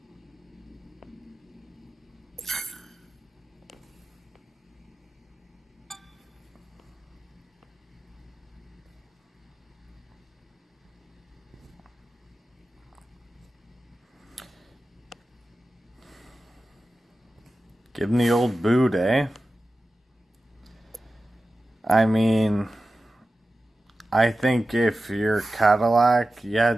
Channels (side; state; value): both; normal; correlation 0.94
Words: Give him the old boot, eh? I mean, I think if you're Cadillac, you